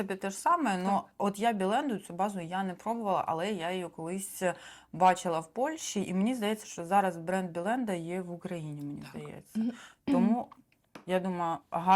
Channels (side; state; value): both; identical; correlation 1.00